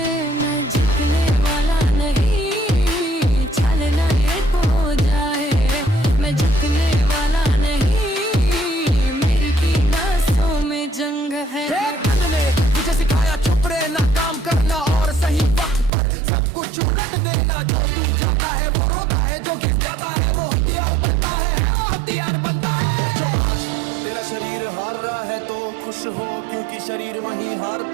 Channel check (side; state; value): left; drops out; at 15.9 s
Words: मैं झुकने वाला नहीं, चलना ये हो जाए। मैं झुकने वाला नहीं, मेरी की नसों में जंग है। ने मुझे सिखाया चुप रहना, काम करना और सही वक्त पर सब कुछ उलट देना। जो टूट जाता है वो रोता है, जो घिस जाता है वो हथियार बनता है, हथियार बनता है। जो आज तेरा शरीर हार रहा है तो खुश हो, क्योंकि शरीर वहीं